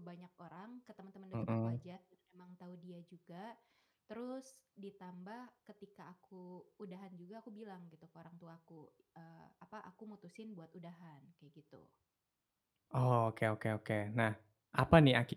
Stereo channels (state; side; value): identical; both; correlation 1.00